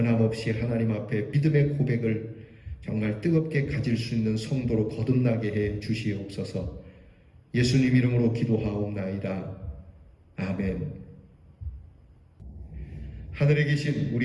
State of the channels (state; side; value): identical; both; correlation 1.00